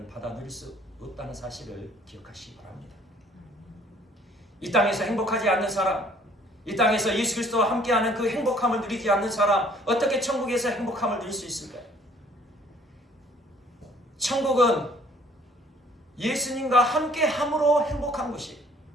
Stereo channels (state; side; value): normal; both; correlation 0.58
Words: 받아 누릴 수 없다는 사실을 기억하시기 바랍니다. 이 땅에서 행복하지 않는 사람, 이 땅에서 예수 그리스도와 함께하는 그 행복함을 누리지 않는 사람, 어떻게 천국에서 행복함을 누릴 수 있을까요? 천국은 예수님과 함께함으로 행복한 것이,